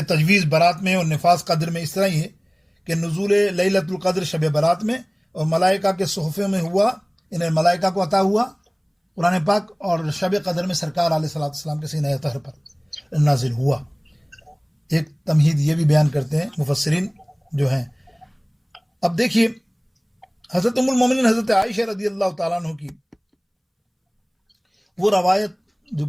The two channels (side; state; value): both; identical; correlation 1.00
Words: تجویز برات میں اور نفاذ قدر میں اس طرح ہی ہے کہ نزول لیلۃ القدر شب برات میں اور ملائکہ کے صحفے میں ہوا، انہیں ملائکہ کو عطا ہوا قرآن پاک، اور شب قدر میں سرکار علیہ الصلوۃ والسلام کے سینہ طاہر پر نازل ہوا۔ ایک تمہید یہ بھی بیان کرتے ہیں مفسرین جو ہیں۔ اب دیکھیے حضرت ام المومنین حضرت عائشہ رضی اللہ تعالیٰ عنہ کی وہ روایت جو